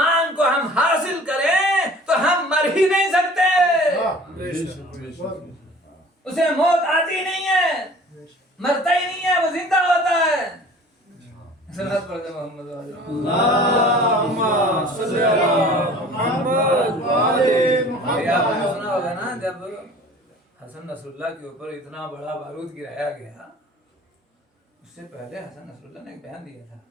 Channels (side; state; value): both; normal; correlation 0.46